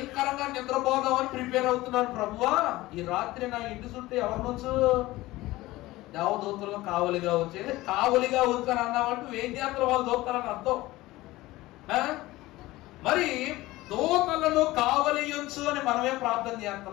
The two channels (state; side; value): quieter; right; 18.4 dB